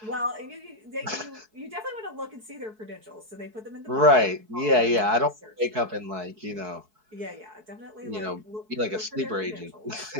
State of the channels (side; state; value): left; late; 4.6 ms